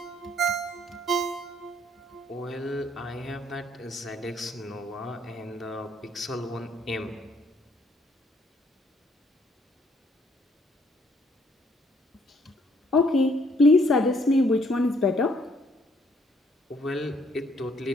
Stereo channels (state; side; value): normal; both; correlation 0.66